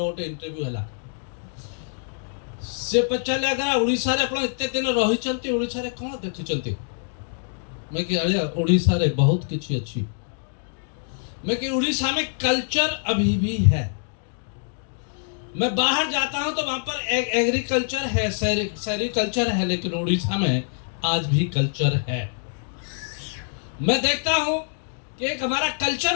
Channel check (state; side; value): silent; right; digital silence